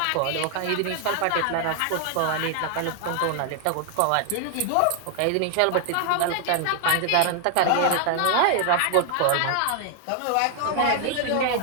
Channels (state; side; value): different; both; correlation 0.00